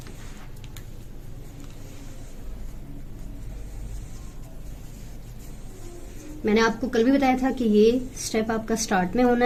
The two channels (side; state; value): both; identical; correlation 1.00